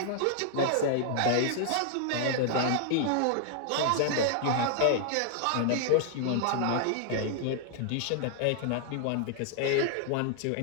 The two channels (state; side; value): different; both; correlation -0.01